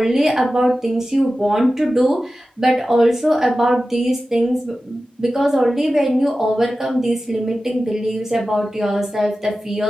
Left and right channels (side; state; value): both; normal; correlation 0.94